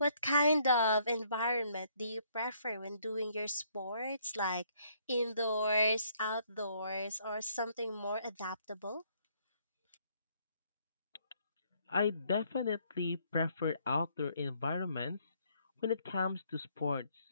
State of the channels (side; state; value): both; inverted; correlation -0.67